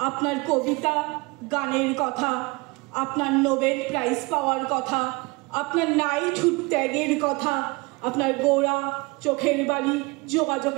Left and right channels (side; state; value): left; quieter; 26.0 dB